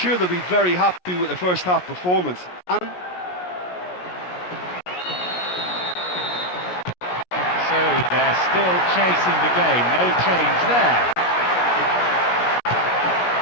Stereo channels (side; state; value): right; late; 17 ms